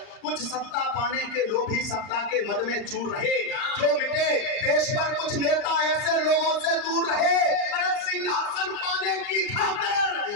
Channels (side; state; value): right; late; 40 ms